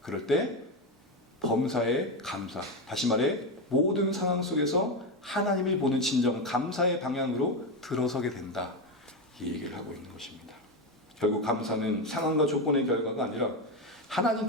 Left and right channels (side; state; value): both; normal; correlation 0.13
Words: 그럴 때 범사의 감사, 다시 말해 모든 상황 속에서 하나님을 보는 진정 감사의 방향으로 들어서게 된다, 이 얘기를 하고 있는 것입니다. 결국 감사는 상황과 조건의 결과가 아니라